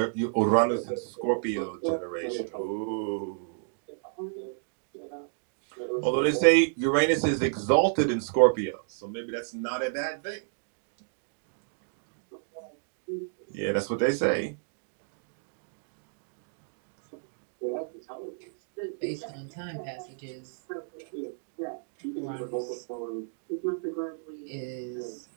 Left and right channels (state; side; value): silent; left; digital silence